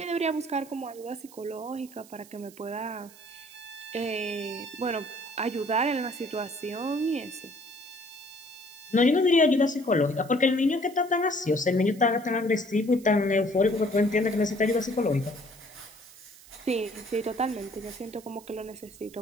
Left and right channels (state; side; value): noise; right; hiss, 22 dB below the sound